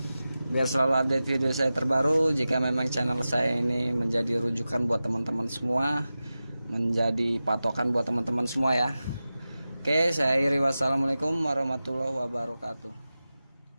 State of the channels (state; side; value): inverted; both; correlation -0.94